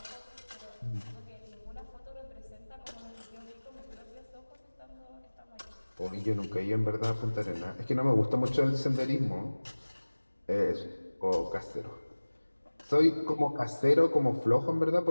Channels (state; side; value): inverted; both; correlation -1.00